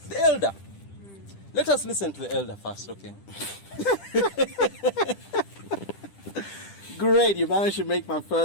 The elder. Let us listen to the elder first, okay? Great, you managed to make my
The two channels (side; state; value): right; late; 10 ms